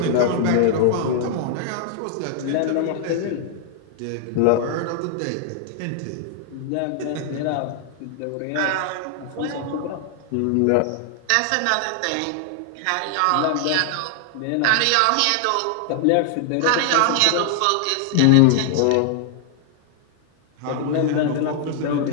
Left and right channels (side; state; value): both; different; correlation 0.00